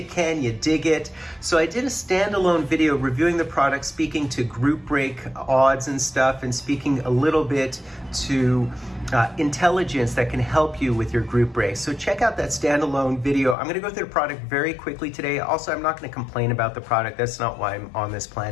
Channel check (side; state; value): right; drops out; at 13.6 s